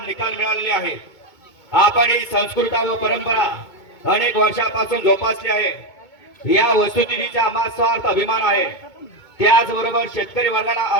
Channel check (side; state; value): right; late; 2.2 ms